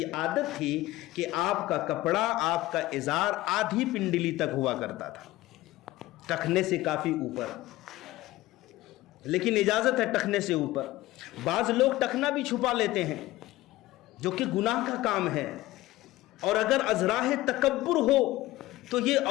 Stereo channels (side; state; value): right; quieter; 17.1 dB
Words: عادت تھی کہ آپ کا کپڑا, آپ کا ازار آدھی پنڈلی تک ہوا کرتا تھا, ٹخنے سے کافی اوپر, لیکن اجازت ہے ٹخنے سے اوپر. بعض لوگ ٹخنا بھی چھپا لیتے ہیں جو کہ گناہ کا کام ہے, اور اگر ازراہ تکبر ہو تو یہ